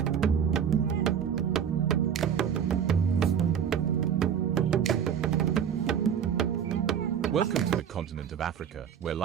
Welcome to the continent of Africa, where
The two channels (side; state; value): left; quieter; 8.2 dB